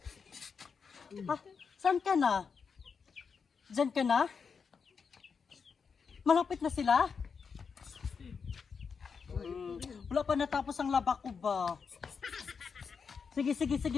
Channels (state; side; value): quieter; right; 5.8 dB